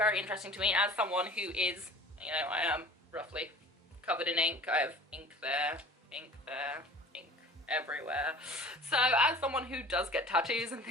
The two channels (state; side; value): normal; both; correlation 0.43